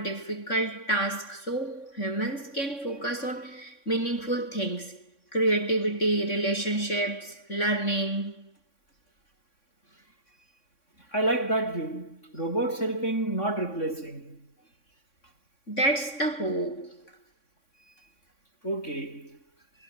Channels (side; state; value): right; late; 3.6 ms